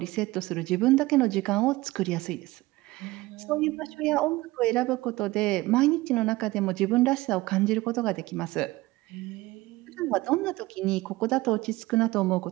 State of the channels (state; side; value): quieter; left; 19.5 dB